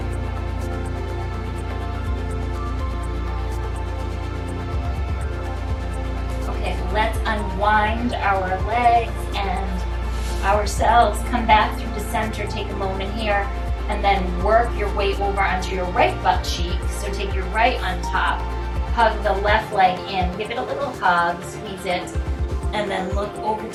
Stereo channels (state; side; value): identical; both; correlation 1.00